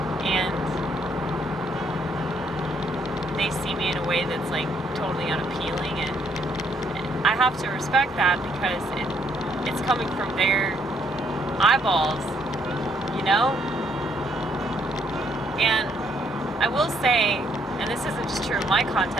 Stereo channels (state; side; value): normal; both; correlation 0.70